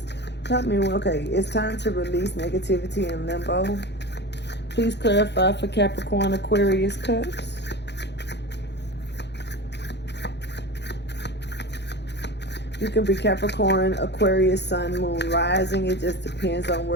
Help me. Okay, it's time to release negativity in limbo. Please clarify for Capricorn Aquarius Cusp. You can be Capricorn, Aquarius, Sun, Moon, Rising. It just depends on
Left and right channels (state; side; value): late; right; 0.50 ms